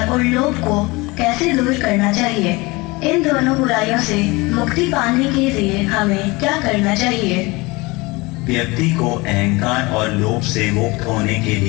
और लोभ को कैसे दूर करना चाहिए? इन दोनों बुराइयों से मुक्ति पाने के लिए हमें क्या करना चाहिए? व्यक्ति को अहंकार और लोभ से मुक्त होने के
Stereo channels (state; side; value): quieter; right; 23.9 dB